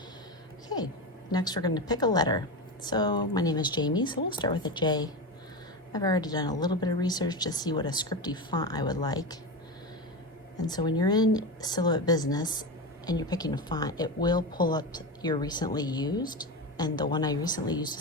Okay, next we're going to pick a letter. So my name is Jamie, so we'll start with a J. I've already done a little bit of research to see what a scripty font I would like. And so when you're in Silhouette Business and you're picking a font, it will pull up your recently used, and the one I recently used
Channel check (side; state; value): both; normal; correlation 0.19